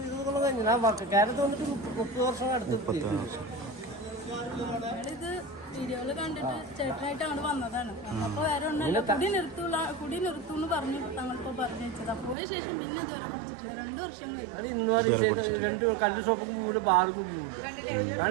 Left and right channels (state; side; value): drops out; left; at 12.4 s